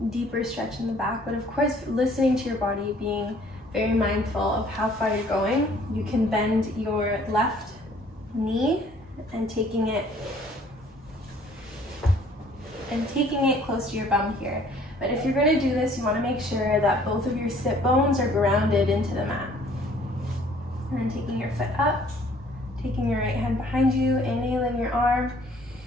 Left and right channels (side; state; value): both; normal; correlation 0.57